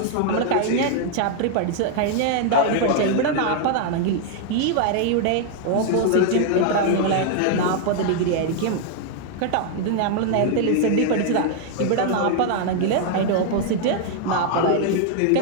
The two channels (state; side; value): different; both; correlation 0.00